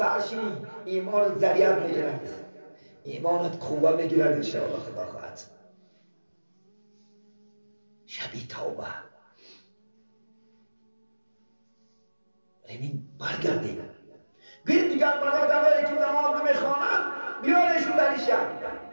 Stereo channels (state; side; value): inverted; both; correlation -1.00